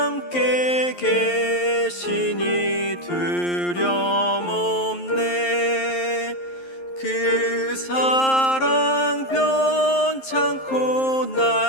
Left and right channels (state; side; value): late; right; 11 ms